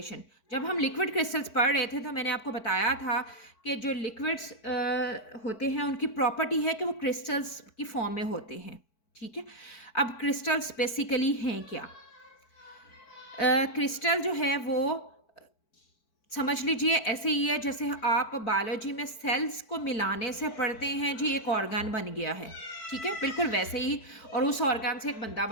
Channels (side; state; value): right; late; 4.5 ms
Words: जब हम लिक्विड क्रिस्टल्स पढ़ रहे थे तो मैंने आपको बताया था कि जो लिक्विड्स होते हैं उनकी प्रॉपर्टी है कि वो क्रिस्टल्स की फॉर्म में होते हैं। ठीक है, अब क्रिस्टल्स बेसिकली हैं क्या? क्रिस्टल जो है वो समझ लीजिए ऐसे ही है जैसे आप बायोलॉजी में सेल्स को मिलाने से पढ़ते हैं जी एक ऑर्गन बन गया है। ठीक है, बिल्कुल वैसे ही। और उस ऑर्गन से एक बंदा